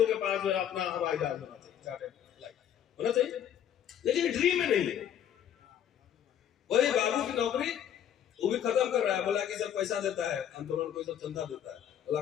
के पास जो अपना हवाई जहाज होना चाहिए, होना चाहिए, लेकिन ड्रीम में नहीं है। वही बाबू की नौकरी वो भी खत्म कर रहा है, बोला कि सब पैसा देता है, आंदोलन को सब चंदा देता है, बोला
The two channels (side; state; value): right; quieter; 9.8 dB